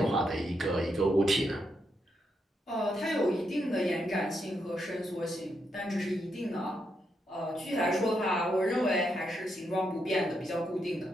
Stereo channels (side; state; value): both; normal; correlation 0.81